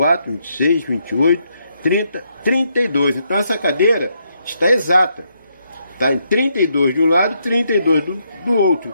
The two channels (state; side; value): inverted; both; correlation -0.77